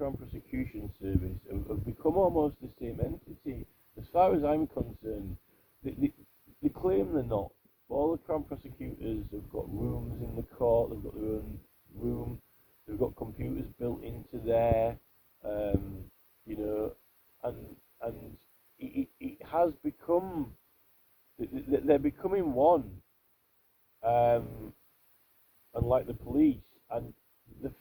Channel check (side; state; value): both; identical; correlation 1.00